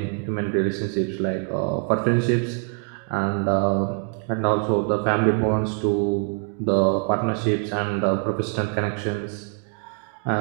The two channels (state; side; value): quieter; left; 39.0 dB